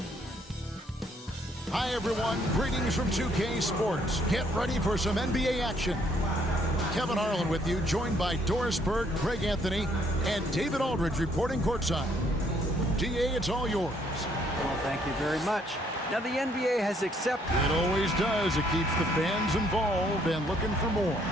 Hi, everyone. Greetings from 2K Sports. Get ready for some NBA action. Kevin Harlan with you, joined by Doris Burke, Greg Anthony, and David Aldridge reporting courtside. DA, it's all yours. Well, thank you very much. Now, the NBA has accepted. It always does. It keeps the fans involved and looking for more.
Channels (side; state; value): both; normal; correlation 0.67